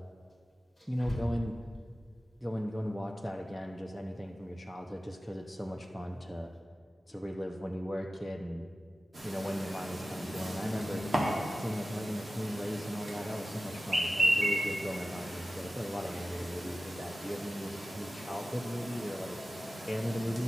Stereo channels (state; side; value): normal; both; correlation 0.94